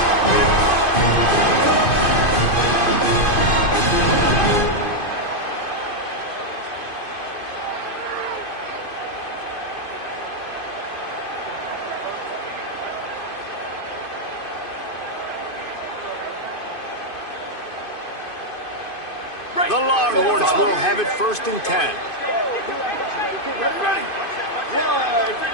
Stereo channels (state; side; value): late; right; 2.5 ms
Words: The Longhorns will have it 1st and 10.